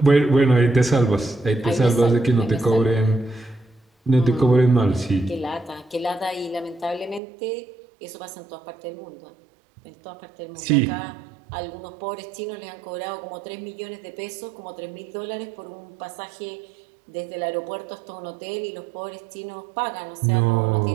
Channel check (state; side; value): drops out; left; at 7.2 s